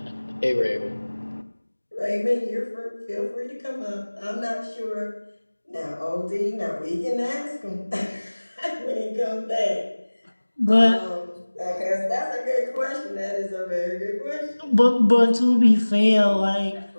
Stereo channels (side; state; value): both; inverted; correlation -1.00